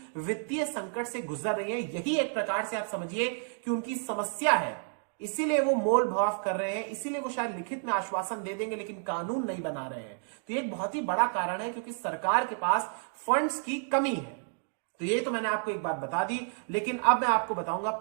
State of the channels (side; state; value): left; silent; 57 dB below the other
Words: वित्तीय संकट से गुजर रही है। यही एक प्रकार से आप समझिए कि उनकी समस्या है, इसीलिए वो मोल भाव कर रहे हैं, इसीलिए वो शायद लिखित में आश्वासन दे देंगे लेकिन कानून नहीं बना रहे हैं। तो ये एक बहुत ही बड़ा कारण है क्योंकि सरकार के पास फंड्स की कमी है। तो ये तो मैंने आपको एक बात बता दी, लेकिन अब मैं आपको बताऊंगा